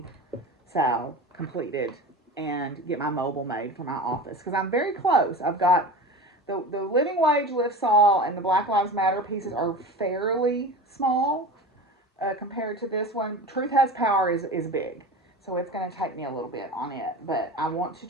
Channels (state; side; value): normal; both; correlation 0.32